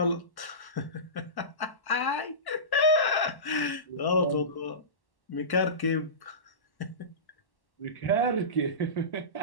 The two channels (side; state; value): right; late; 1.1 ms